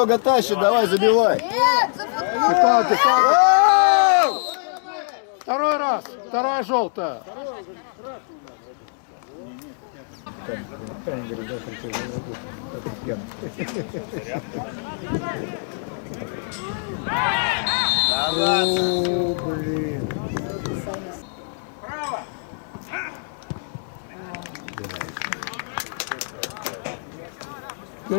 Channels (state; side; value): silent; right; digital silence